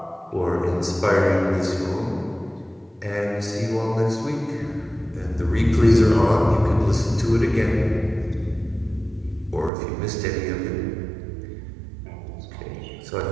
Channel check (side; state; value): left; drops out; at 9.7 s